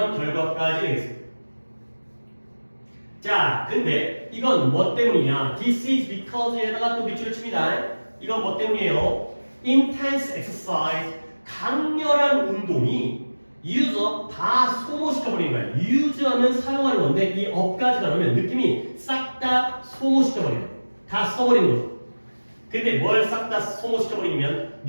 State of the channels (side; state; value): both; inverted; correlation -1.00